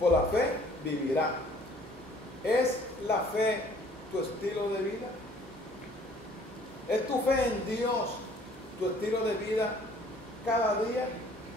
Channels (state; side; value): normal; both; correlation 0.56